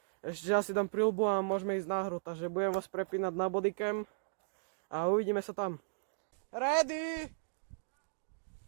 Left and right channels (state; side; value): silent; left; digital silence